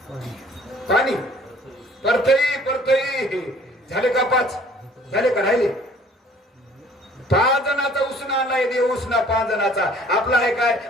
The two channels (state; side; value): normal; both; correlation 0.55